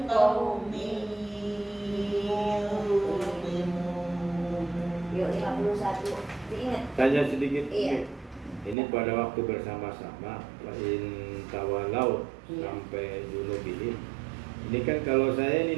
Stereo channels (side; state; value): left; drops out; at 8.8 s